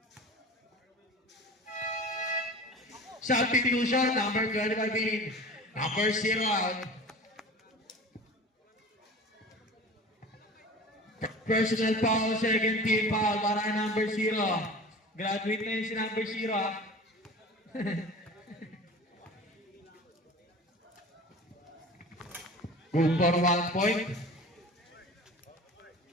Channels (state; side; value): normal; both; correlation 0.38